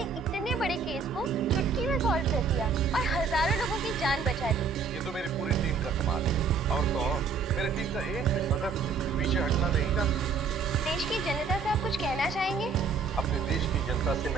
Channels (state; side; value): quieter; left; 5.1 dB